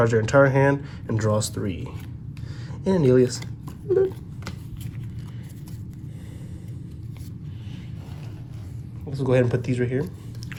their entire hand and draws 3. And Anelius. Let's go ahead and put these right here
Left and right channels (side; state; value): both; identical; correlation 1.00